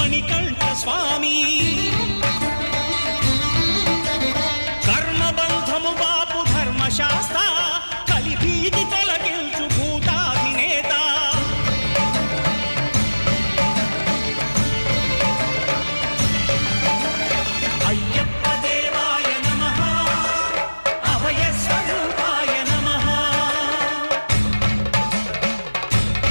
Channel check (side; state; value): both; inverted; correlation -1.00